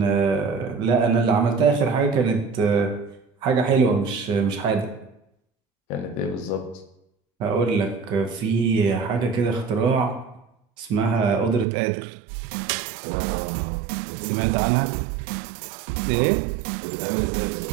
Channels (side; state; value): left; drops out; at 11.7 s